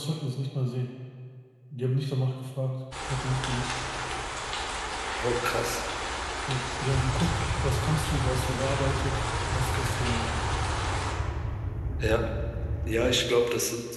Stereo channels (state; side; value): identical; both; correlation 1.00